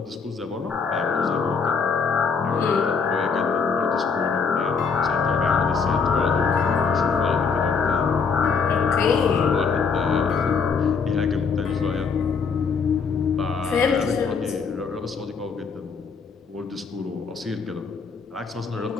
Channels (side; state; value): right; quieter; 5.5 dB